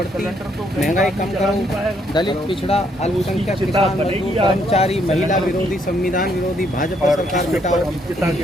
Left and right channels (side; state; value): both; normal; correlation 0.71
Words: महंगाई कम करो, दलित, पिछड़ा, अल्पसंख्यक, किसान, मजदूर, कर्मचारी, महिला विरोधी, संविधान विरोधी, भाजपा सरकार मिटाओ,